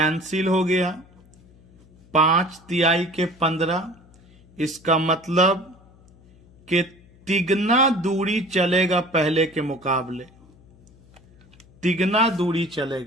हो गया, 5 तिहाई के 15। इसका मतलब कि तिगना दूरी चलेगा पहले के मुकाबले, तिगना दूरी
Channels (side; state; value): left; noise; hum, 27 dB below the sound